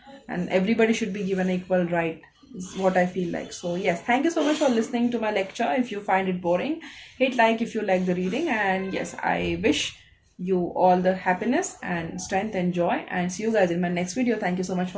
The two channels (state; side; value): identical; both; correlation 1.00